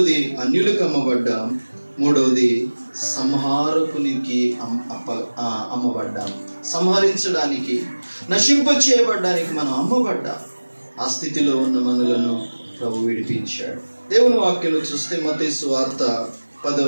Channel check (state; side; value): inverted; both; correlation -1.00